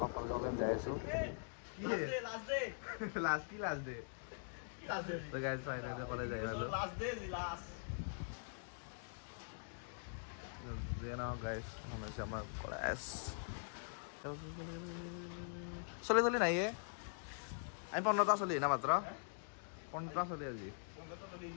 যাই আছোঁ। কলেজ যাই পালোঁ। গাইজ হৈছে আমাৰ কলেজ। চলি নাই আমি 15টা চলি না মাত্ৰ 15টা চলি আজি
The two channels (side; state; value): right; silent; digital silence